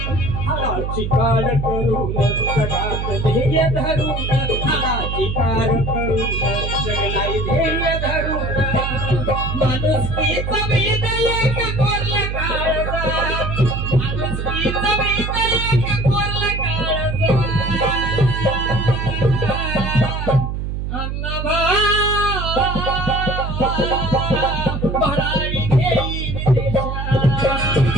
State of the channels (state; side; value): noise; right; hum, 3 dB below the sound